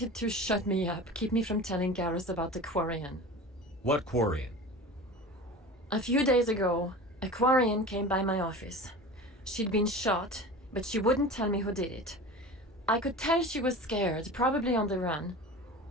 to shut me up, keep me from telling Garrus about the Quarian. What Quarian? A few days ago, a Quarian came by my office. She'd been shot, but she wouldn't tell me who did it. I could tell she was scared, probably on the run.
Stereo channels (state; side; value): normal; both; correlation 0.34